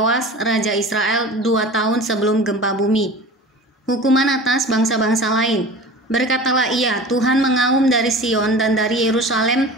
Raja Israel 2 tahun sebelum gempa bumi. Hukuman atas bangsa-bangsa lain. Berkatalah ia, Tuhan mengaum dari Sion dan dari Yerusalem,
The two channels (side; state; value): both; normal; correlation 0.38